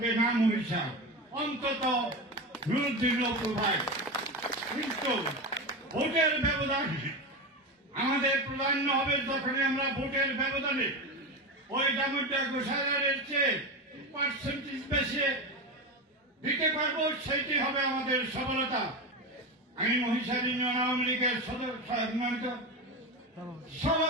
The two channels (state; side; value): normal; both; correlation 0.20